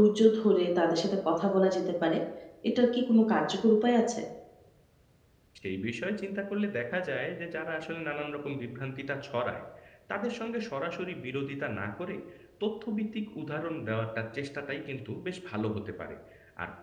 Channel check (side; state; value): both; identical; correlation 1.00